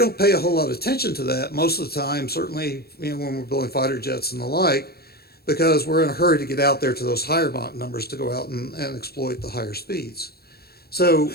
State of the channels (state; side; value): late; right; 0.46 ms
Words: pay a whole lot of attention to that most of the time, certainly when we're building fighter jets and the like, because we're in a hurry to get out there to those higher Mach numbers to go out and exploit the higher speeds. So,